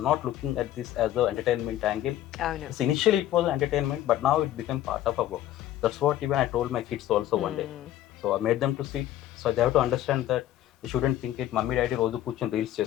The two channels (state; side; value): quieter; right; 13.0 dB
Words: not looking at this as an entertainment angle. Oh no. So initially it was entertainment, but now it became part of our work. That's what even I told my kids also one day. So I made them to see it. So they have to understand that they shouldn't think it. Mummy, daddy, రోజు కూర్చొని reels